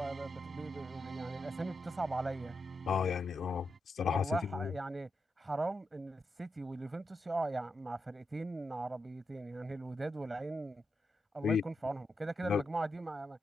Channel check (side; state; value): both; normal; correlation 0.86